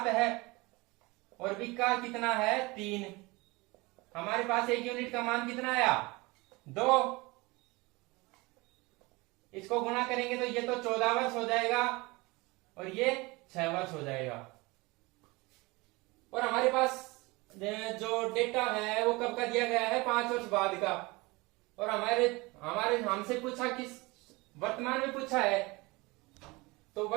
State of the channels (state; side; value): quieter; left; 24.0 dB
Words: है, और बी का कितना है 3। हमारे पास 1 यूनिट का मान कितना आया 2, इसको गुणा करेंगे तो ये तो 14 वर्ष हो जाएगा, और ये 6 वर्ष हो जाएगा। और हमारे पास जो डेटा है वो कब का दिया गया है 5 वर्ष बाद का, और हमारे हमसे पूछा किस वर्तमान में पूछा है, तो